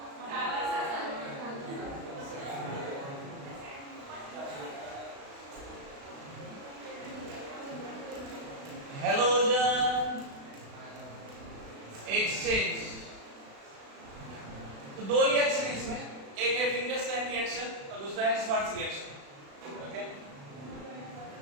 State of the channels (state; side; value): late; left; 36 ms